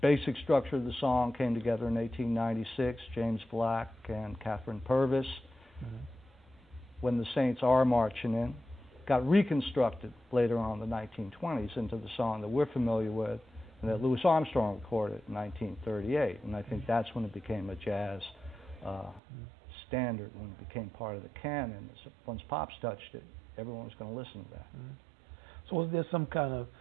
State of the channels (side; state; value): left; drops out; at 19.2 s